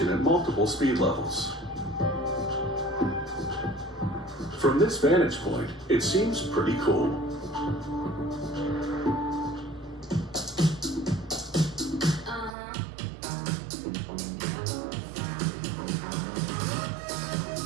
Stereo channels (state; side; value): drops out; left; at 12.6 s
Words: at multiple speed levels. From this vantage point, it seems pretty cool.